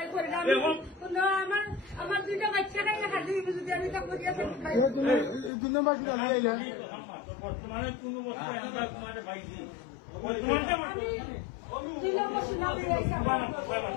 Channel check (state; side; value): drops out; right; at 5.5 s